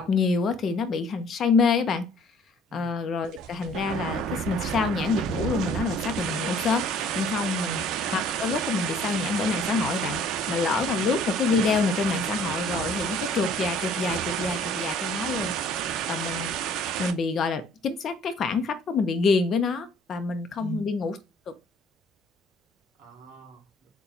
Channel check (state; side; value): normal; both; correlation 0.55